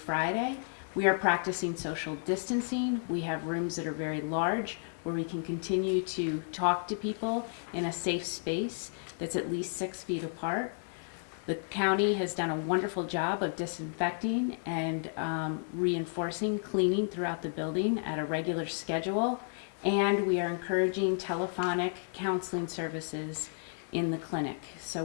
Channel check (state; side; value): silent; right; digital silence